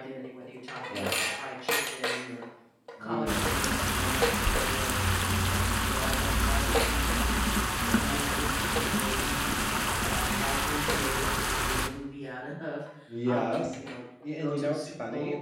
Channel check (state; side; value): identical; both; correlation 1.00